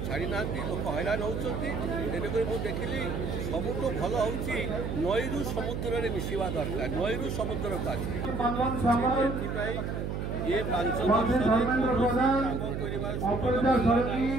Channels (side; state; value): right; noise; hum, 3 dB below the sound